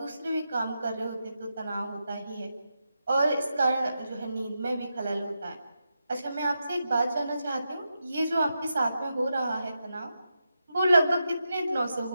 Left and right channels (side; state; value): both; inverted; correlation -0.87